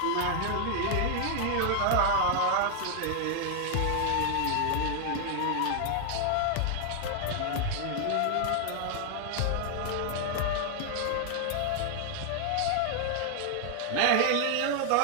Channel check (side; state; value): both; different; correlation 0.00